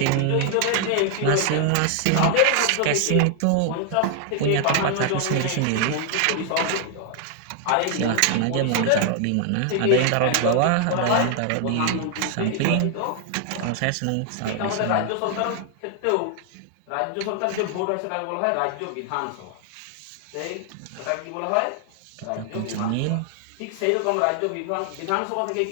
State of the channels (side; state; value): both; different; correlation 0.00